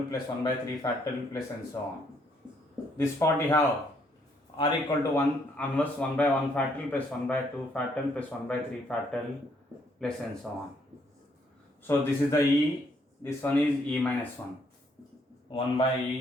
plus 1 by 3 factorial plus and so on. This part you have R equal to 1 inverse 1 by 1 factorial plus 1 by 2 factorial plus 1 by 3 factorial plus and so on. So this is the e, this one is e minus 1. 1 by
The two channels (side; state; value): both; normal; correlation 0.70